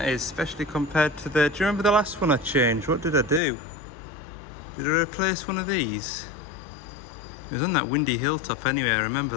is, especially compared to the... Do you remember the last one I changed? What did I do? Did I replace one of these? It was on that windy hilltop anyway, I remember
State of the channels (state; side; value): drops out; right; at 3.4 s